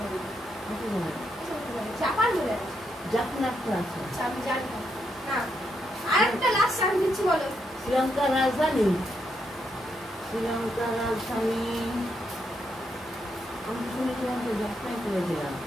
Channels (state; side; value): normal; both; correlation 0.80